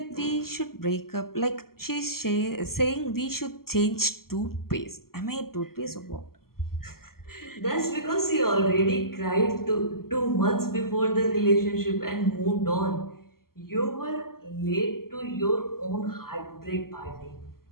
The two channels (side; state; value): right; late; 0.93 ms